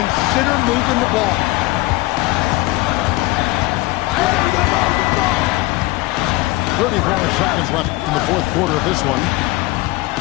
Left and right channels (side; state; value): right; quieter; 20.5 dB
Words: moving the ball. 34 seconds left in the fourth quarter of this one.